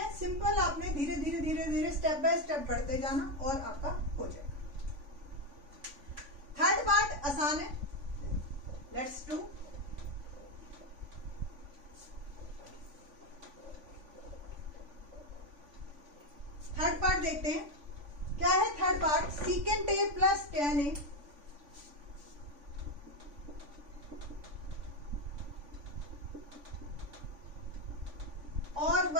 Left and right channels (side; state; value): left; late; 3.5 ms